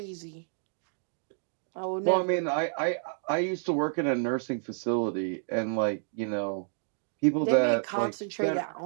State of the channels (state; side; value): silent; left; digital silence